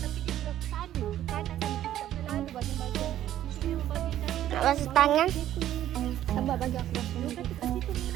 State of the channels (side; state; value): left; quieter; 12.2 dB